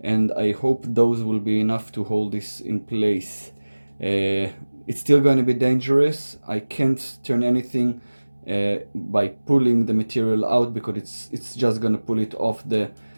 I hope those will be enough to hold this in place. It's still going to be dangerous. I can't turn anything by pulling the material out because it's just going to pull it off the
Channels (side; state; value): both; inverted; correlation -1.00